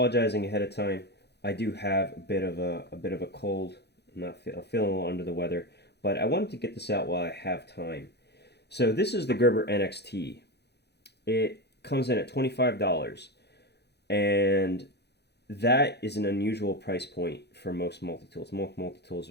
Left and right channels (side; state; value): right; late; 0.48 ms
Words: ahead of time. I do have a bit of a cold. I'm feeling a little under the weather, but I wanted to get this out while I have time. So this is the Gerber NXT. It comes in at $25, and that is an unusual price point for most multi-tools. Most multi-tools